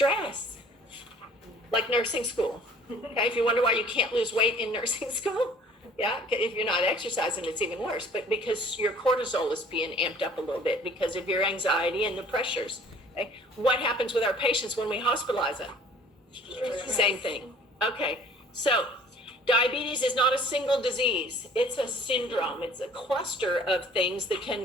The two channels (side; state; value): both; normal; correlation 0.52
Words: Like nursing school. Okay, if you wonder why you can't lose weight in nursing school, yeah, if you're not exercising, it's even worse. But because your cortisol is being amped up a little bit because of your anxiety and the pressures. Okay, what happens with our patients when we hospitalize them? Same thing. Okay. So diabetes is not a single disease. It's a syndrome. It's a cluster of things that